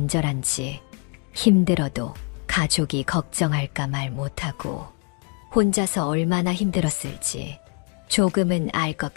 힘들어도 가족이 걱정할까 말 못하고 혼자서 얼마나 힘들었을지 조금은 알 것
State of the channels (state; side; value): quieter; right; 34.8 dB